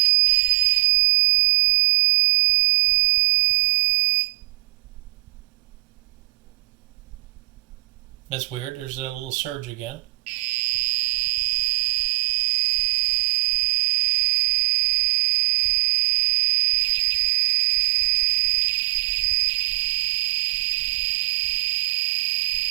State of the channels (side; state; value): left; quieter; 25.8 dB